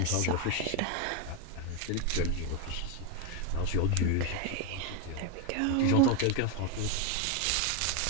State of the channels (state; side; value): different; both; correlation 0.02